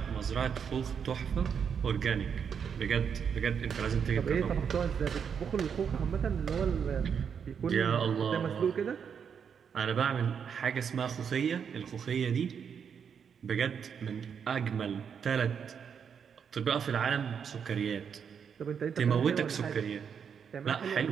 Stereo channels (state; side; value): quieter; left; 7.1 dB